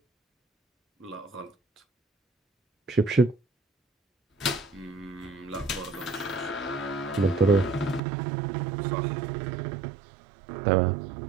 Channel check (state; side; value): drops out; left; at 8.0 s